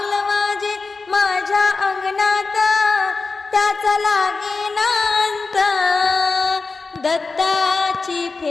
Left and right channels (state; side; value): quieter; right; 4.1 dB